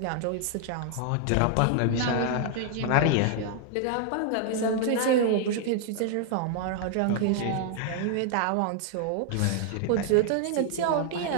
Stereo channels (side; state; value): both; different; correlation 0.00